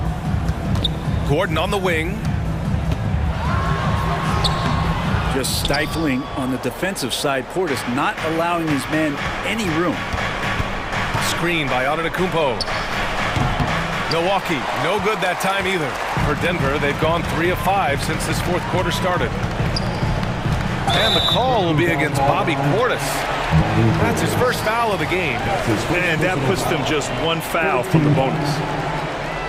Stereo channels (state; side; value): identical; both; correlation 1.00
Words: Gordon on the wing. Just stifling on the defensive side. Portis not allowing his man any room. Screen by Antetokounmpo. Milwaukee, no good that time either. For Denver, they've gone 3 of 5 since this fourth quarter started. And the call will be against Bobby Portis. That's his first foul of the game. And that puts them just 1 foul from the bonus.